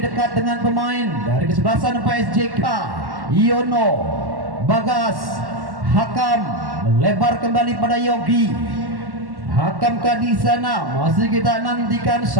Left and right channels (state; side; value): late; left; 1.1 ms